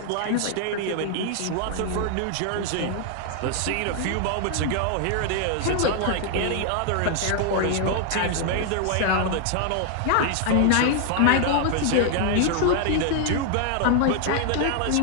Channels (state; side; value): different; both; correlation 0.00